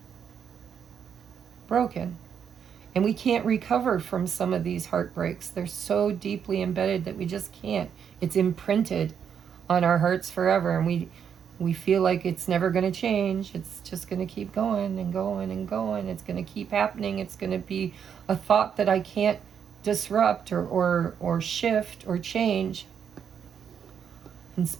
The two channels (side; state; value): left; quieter; 7.8 dB